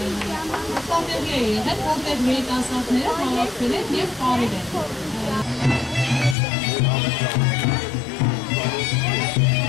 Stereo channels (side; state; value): right; drops out; at 6.4 s